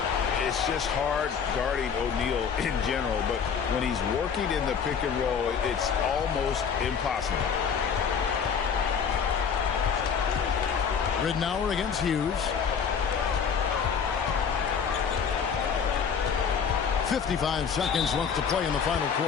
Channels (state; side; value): quieter; right; 6.7 dB